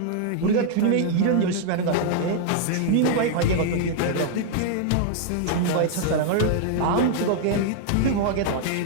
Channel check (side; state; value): both; different; correlation -0.01